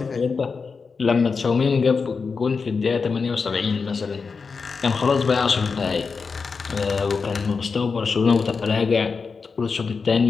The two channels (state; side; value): quieter; right; 5.0 dB